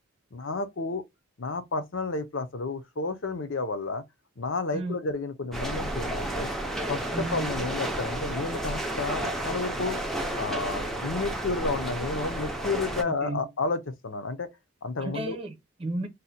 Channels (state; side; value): normal; both; correlation 0.11